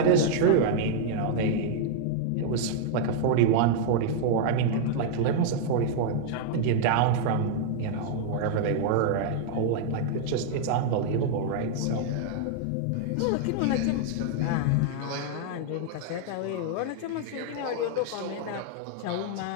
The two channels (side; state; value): both; different; correlation -0.01